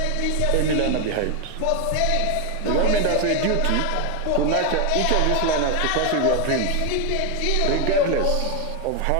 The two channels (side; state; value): both; different; correlation 0.01